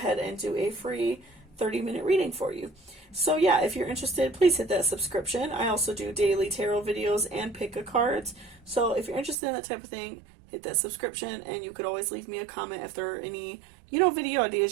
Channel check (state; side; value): drops out; left; at 9.3 s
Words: and do a free 30-minute reading for you. So yeah, if you're interested, please hit that subscription. I also do daily tarot videos and pick-a-cards. So if you're interested in that type of thing, hit that subscription, and you could always leave me a comment if there are any, you know, video